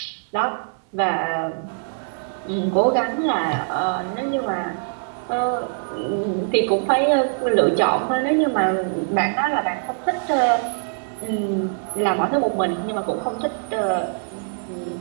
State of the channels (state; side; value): silent; left; digital silence